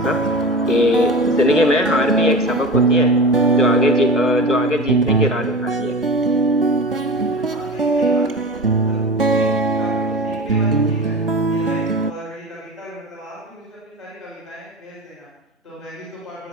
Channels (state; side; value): normal; both; correlation 0.31